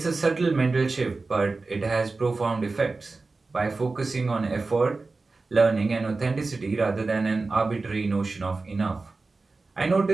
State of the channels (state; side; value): quieter; left; 3.7 dB